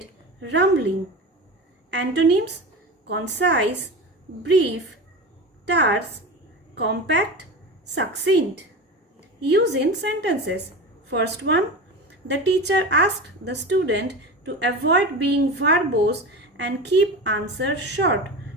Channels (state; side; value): normal; both; correlation 0.28